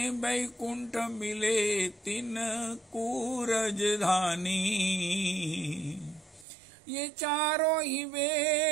बैकुंठ मिले तिन कूरज धानी। ये चारों ही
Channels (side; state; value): left; drops out; at 6.5 s